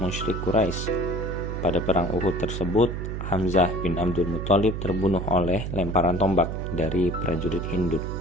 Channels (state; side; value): noise; right; hum, 4 dB below the sound